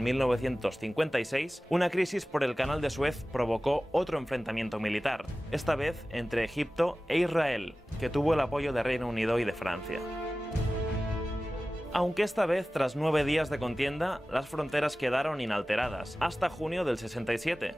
1956, una crisis por el Canal de Suez provocó otro enfrentamiento militar, esta vez entre Egipto e Israel, que tuvo el apoyo de Reino Unido y de Francia. Aunque esta vez, tras 9 días de contienda, las fronteras quedaron inalteradas, hasta junio del 67,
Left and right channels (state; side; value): normal; both; correlation 0.96